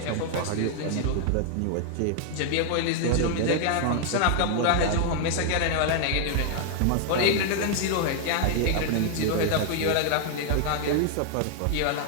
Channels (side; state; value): both; different; correlation 0.00